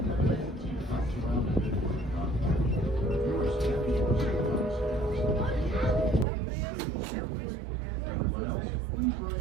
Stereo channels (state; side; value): drops out; left; at 6.2 s